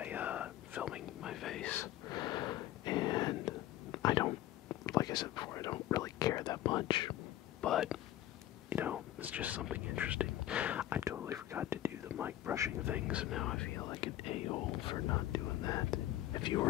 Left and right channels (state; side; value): quieter; right; 13.6 dB